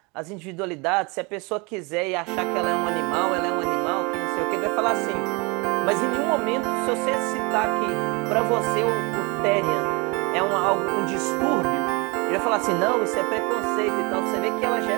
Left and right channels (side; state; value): left; quieter; 28.6 dB